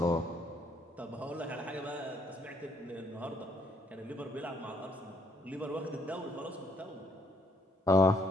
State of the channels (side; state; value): both; normal; correlation 0.69